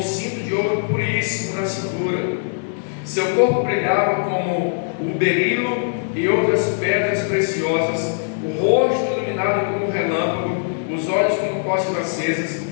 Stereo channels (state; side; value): silent; right; digital silence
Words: cinto de ouro puríssimo na cintura. Seu corpo brilhava como o berilo e outras pedras preciosas, o rosto iluminado como um relâmpago, os olhos como tochas acesas,